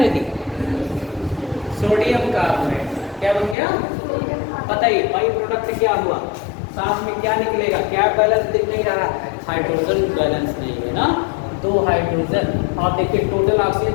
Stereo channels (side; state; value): right; drops out; at 3.6 s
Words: Sodium carbonate. क्या बन गया? बताइए बाई प्रोडक्ट क्या हुआ? साथ में क्या निकलेगा? क्या बैलेंस दिख नहीं रहा? हाइड्रोजन बैलेंस नहीं है ना, 2 हाइड्रोजन। और देखिए टोटल ऑक्सीजन